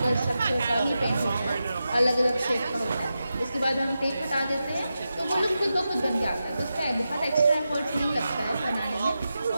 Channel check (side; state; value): both; inverted; correlation -0.90